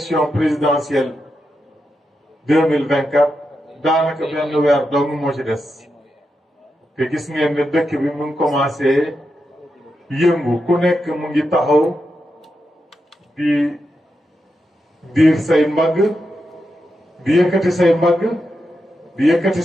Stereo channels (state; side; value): normal; both; correlation 0.87